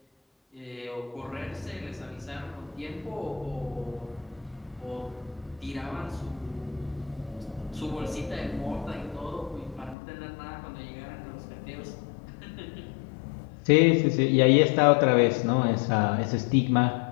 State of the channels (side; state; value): right; drops out; at 10.0 s